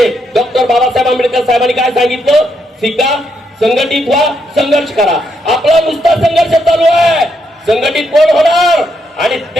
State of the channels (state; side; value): normal; both; correlation 0.78